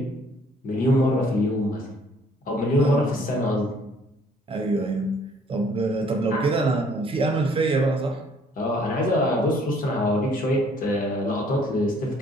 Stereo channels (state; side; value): normal; both; correlation 0.60